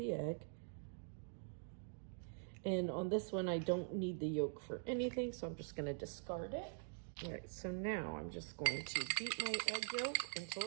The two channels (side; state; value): left; silent; digital silence